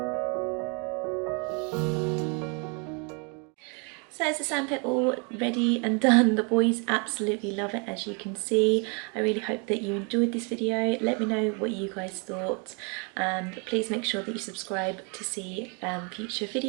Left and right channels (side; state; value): left; quieter; 34.9 dB